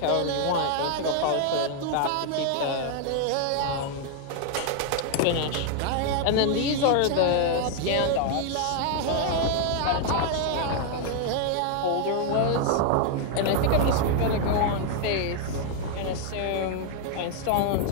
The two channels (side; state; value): both; different; correlation 0.00